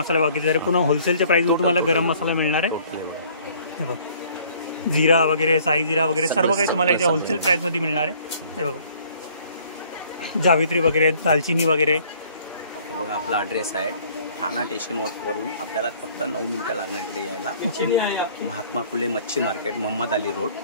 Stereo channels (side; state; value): both; inverted; correlation -0.56